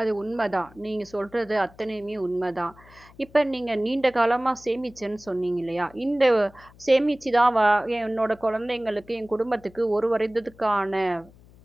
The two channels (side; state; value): left; noise; hum, 25 dB below the sound